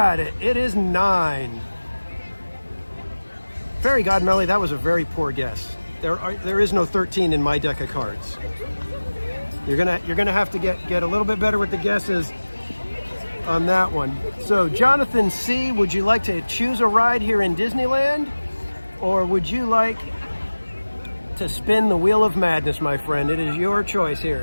it. It is 9. Fairy Godmelly, that was a very poor guess. There is no 13 in my deck of cards. You're gonna have to get a little bit better with the guesses on that one. So Jonathan C., would you like to choose a ride here in Disneyland, or would you like to spin the Wheel of Madness, my friend? It is your choice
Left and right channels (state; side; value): inverted; both; correlation -1.00